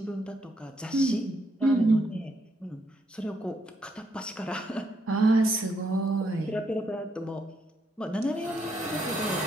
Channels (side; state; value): both; normal; correlation 0.76